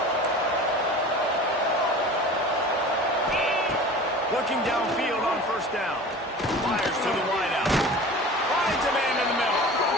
Looking downfield on 1st down. Fires to the wideout. Finds a man in the middle.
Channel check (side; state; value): both; normal; correlation 0.39